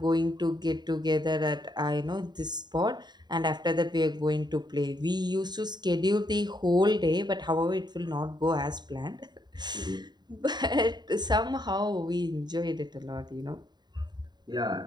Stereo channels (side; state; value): left; late; 0.21 ms